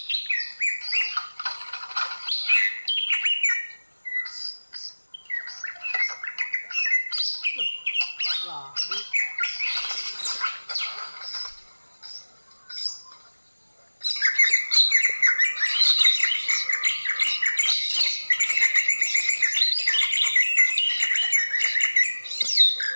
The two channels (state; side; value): inverted; both; correlation -1.00